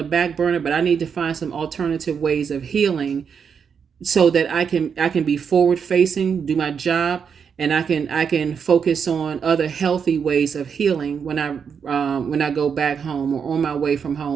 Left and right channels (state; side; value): quieter; left; 6.7 dB